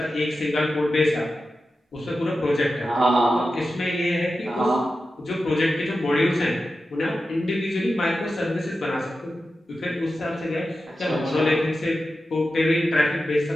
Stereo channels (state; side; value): normal; both; correlation 0.92